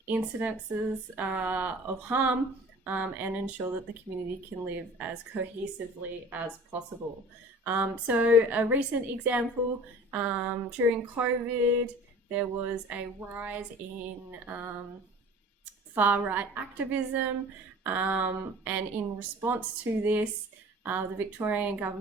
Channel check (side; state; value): both; normal; correlation 0.43